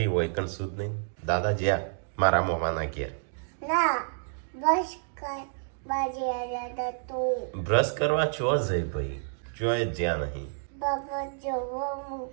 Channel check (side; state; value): left; silent; digital silence